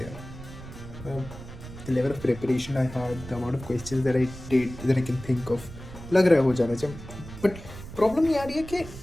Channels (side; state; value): right; noise; rumble, 13 dB below the sound